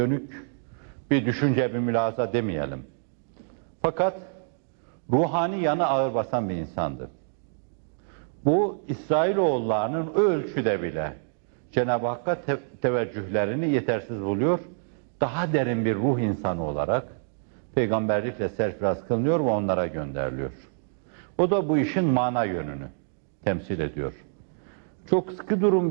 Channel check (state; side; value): silent; left; digital silence